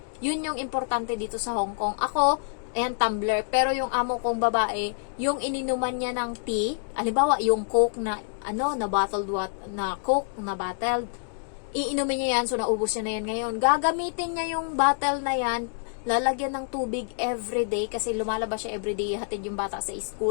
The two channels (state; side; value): silent; right; digital silence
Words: Yun yung importante dito sa Hong Kong. Ako, ayan, tumbler. Pero yung amo kong babae, yung ininuman niya ng tea, halimbawa, yung Coke na, na bottled na Coke na bottled, iinumin niya yan, so naubos niya na yan ngayon. Gagamitin niya yung bottle na yan, lalagyan ng tubig everyday, kasi lumalabas siya everyday, hatid yung bata sa